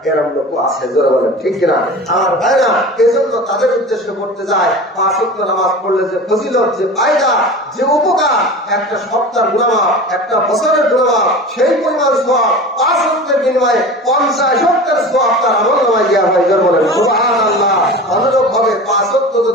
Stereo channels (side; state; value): both; normal; correlation 0.34